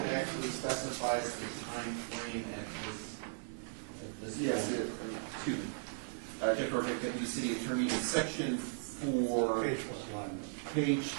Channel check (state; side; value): silent; left; digital silence